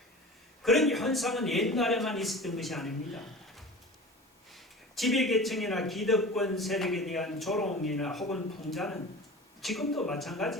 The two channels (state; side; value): normal; both; correlation 0.36